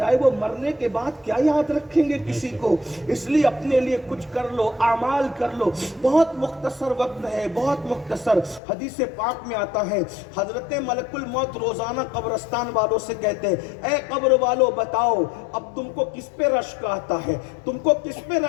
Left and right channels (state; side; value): drops out; right; at 8.6 s